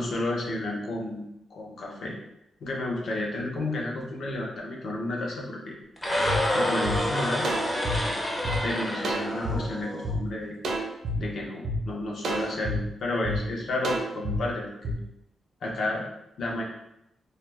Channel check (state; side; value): normal; both; correlation 0.79